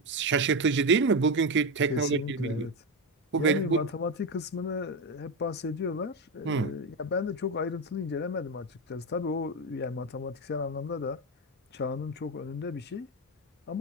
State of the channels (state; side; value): normal; both; correlation 0.12